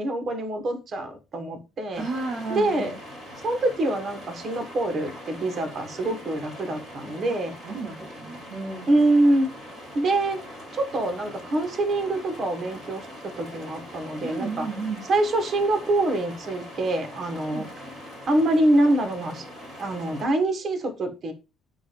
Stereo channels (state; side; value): normal; both; correlation 0.79